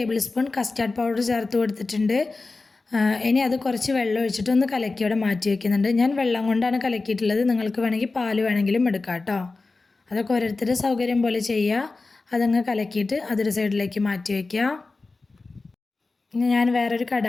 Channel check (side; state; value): right; quieter; 3.7 dB